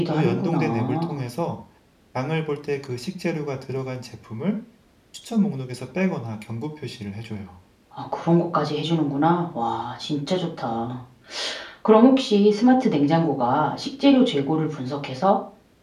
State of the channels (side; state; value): both; identical; correlation 1.00